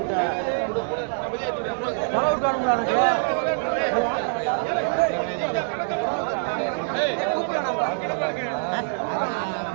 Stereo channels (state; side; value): silent; left; 62 dB below the other